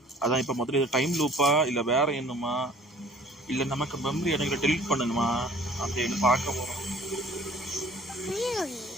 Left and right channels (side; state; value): both; normal; correlation 0.51